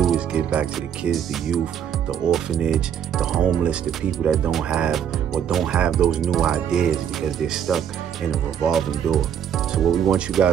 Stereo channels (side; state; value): left; quieter; 8.8 dB